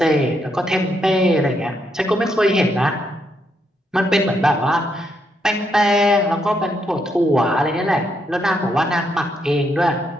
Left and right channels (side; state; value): both; normal; correlation 0.77